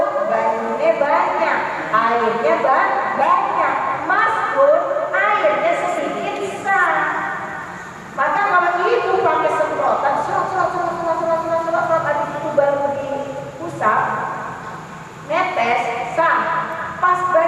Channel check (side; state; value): both; identical; correlation 1.00